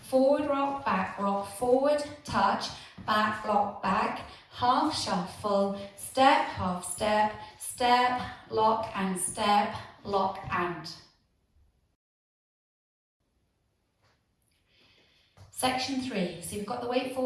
forward rock, forward, touch, back lock, back, half shuffle, step, half step, step, lock and step, lock and. Section 3, so you've got the weight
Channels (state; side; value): identical; both; correlation 1.00